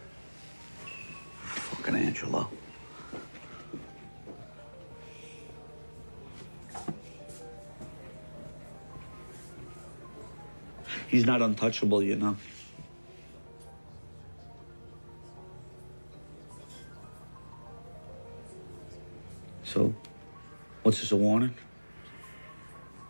Fucking Angelo. He's not untouchable, you know. So, what's this, a warning?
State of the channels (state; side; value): inverted; both; correlation -1.00